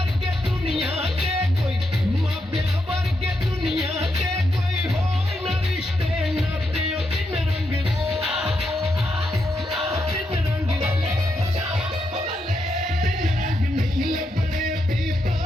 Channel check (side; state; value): both; normal; correlation 0.82